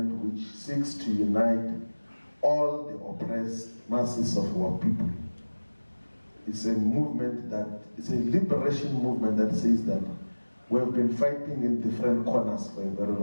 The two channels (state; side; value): inverted; both; correlation -1.00